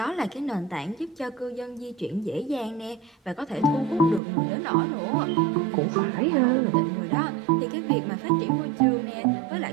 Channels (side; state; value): left; drops out; at 4.2 s